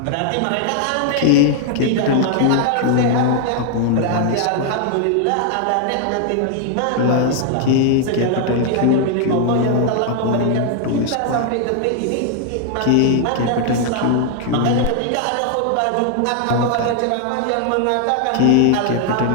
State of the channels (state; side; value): different; both; correlation 0.00